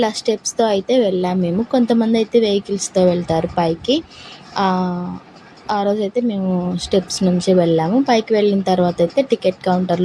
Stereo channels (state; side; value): identical; both; correlation 1.00